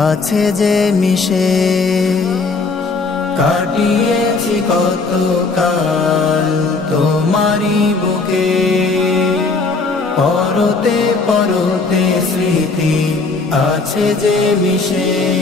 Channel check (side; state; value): right; quieter; 4.0 dB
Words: আছে যে মিশে। কাটিয়েছি কত কাল তোমারি বুকে, পরতে পরতে স্মৃতি আছে যে মিশে।